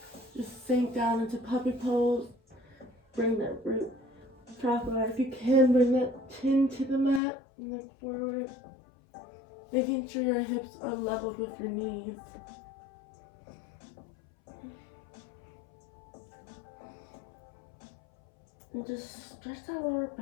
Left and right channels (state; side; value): drops out; right; at 7.2 s